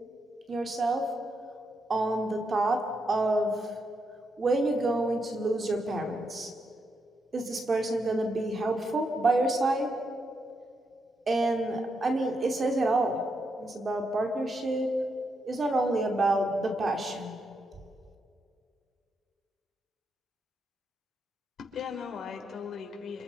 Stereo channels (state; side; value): normal; both; correlation 0.81